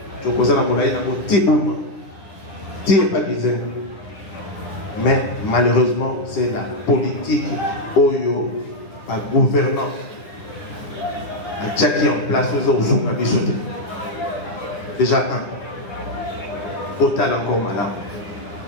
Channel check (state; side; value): late; right; 9.9 ms